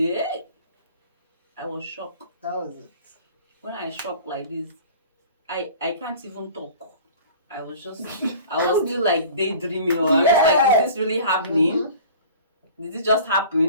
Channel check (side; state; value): both; inverted; correlation -0.44